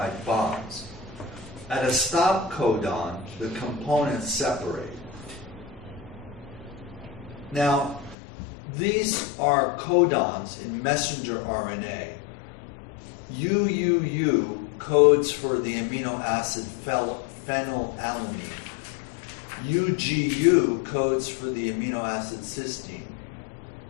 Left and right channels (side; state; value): right; drops out; at 8.2 s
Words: bonds. At a stop codon, the components separate. Now, these are codons in messenger RNA. UUU codes for the amino acid phenylalanine. UGU codes for the amino acid cysteine.